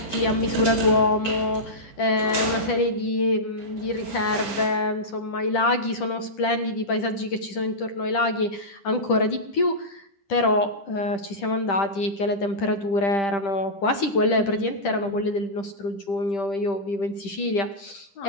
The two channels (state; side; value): late; right; 10 ms